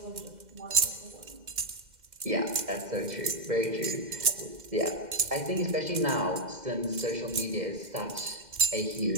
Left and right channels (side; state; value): left; late; 2.1 ms